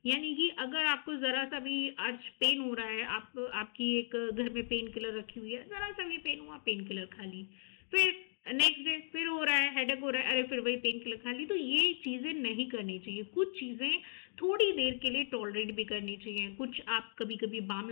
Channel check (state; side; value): silent; right; digital silence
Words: यानी कि अगर आपको ज़रा सा भी आज पेन हो रहा है, आपकी एक घर में पेन किलर रखी हुई है, ज़रा सा भी पेन हुआ पेन किलर खा ली, फिर नेक्स्ट डे फिर हो रहा है, हेडेक हो रहा है, अरे फिर वही पेन किलर खा ली। तो ये चीज़ें नहीं करनी चाहिए। कुछ चीज़ें थोड़ी देर के लिए टॉलरेट भी करनी चाहिए, कुछ आप कभी कभी बाम